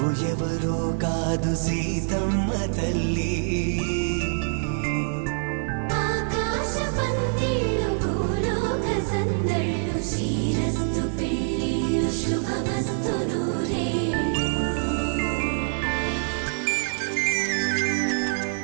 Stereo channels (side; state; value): left; silent; digital silence